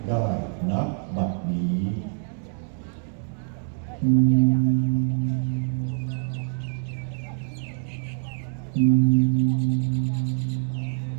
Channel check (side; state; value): left; silent; 56 dB below the other